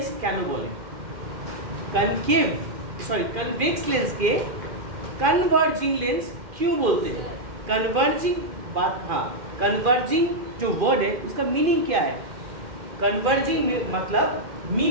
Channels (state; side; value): late; left; 2.5 ms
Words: কেন বলে? कन्वेक्स लेंस के कन्वर्जिंग लेंस क्यों बोलते हैं? कन्वर्जिंग बात, हाँ कन्वर्जिंग जो वर्ड है उसका मीनिंग क्या है? कन्वर्जिंग मतलब